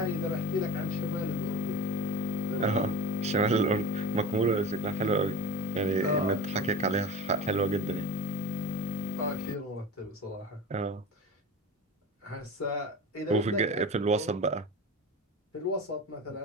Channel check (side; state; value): both; normal; correlation 0.32